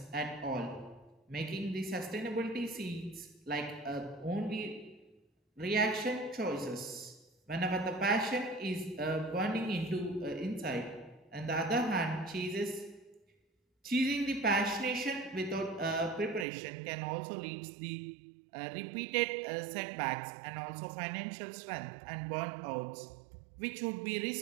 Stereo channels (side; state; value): left; drops out; at 16.4 s